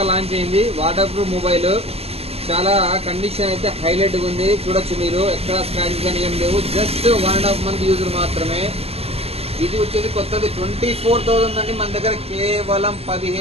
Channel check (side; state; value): left; late; 0.29 ms